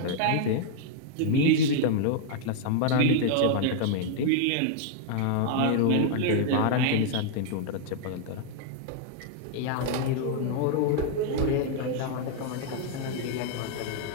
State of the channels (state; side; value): different; both; correlation 0.00